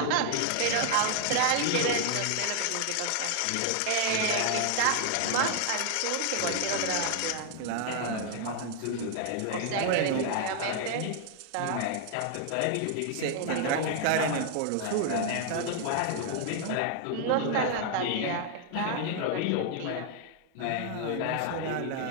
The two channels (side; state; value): both; different; correlation 0.00